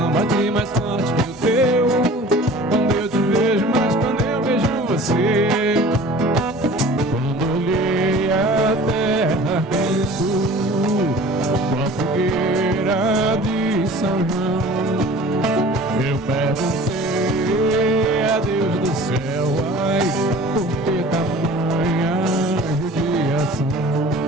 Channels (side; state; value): both; normal; correlation 0.44